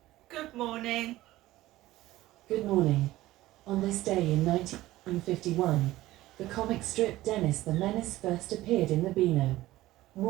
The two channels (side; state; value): left; quieter; 16.6 dB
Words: good morning. Good morning. On this day in 1951, the comic strip Dennis the Menace first appeared in the Beano.